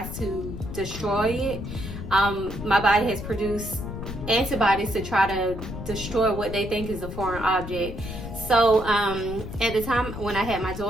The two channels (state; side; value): noise; left; rumble, 8 dB below the sound